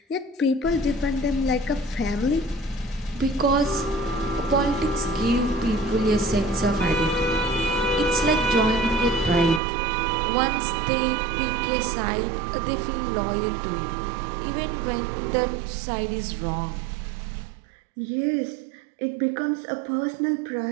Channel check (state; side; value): drops out; left; at 9.6 s